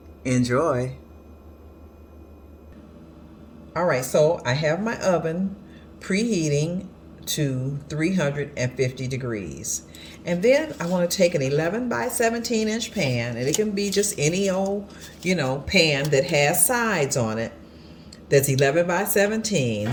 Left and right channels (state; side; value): identical; both; correlation 1.00